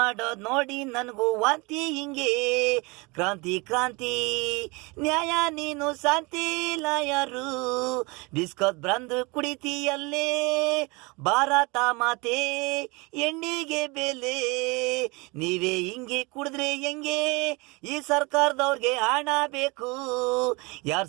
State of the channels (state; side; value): quieter; left; 26.8 dB